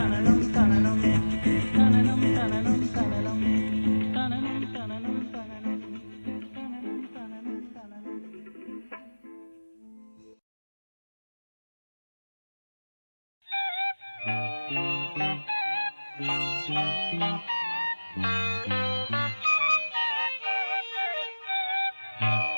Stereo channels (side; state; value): both; inverted; correlation -1.00